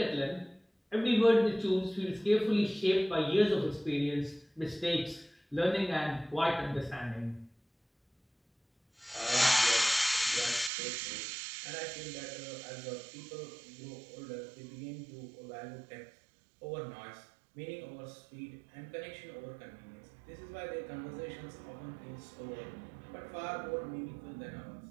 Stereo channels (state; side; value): drops out; left; at 10.7 s